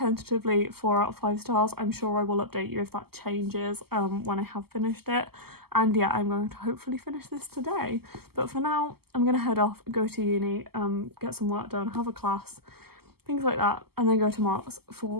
4 out of 5 stars. I'm sure I will update you if that changes when I have finished it. And yeah, I'm going to hopefully finish this today. But for now, I'm gonna head off, go to uni, get some work done, have a class, things like that, and then go to Mark's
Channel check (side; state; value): left; late; 0.96 ms